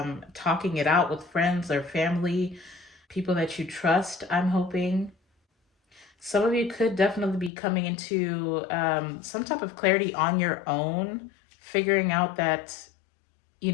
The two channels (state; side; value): drops out; right; at 7.5 s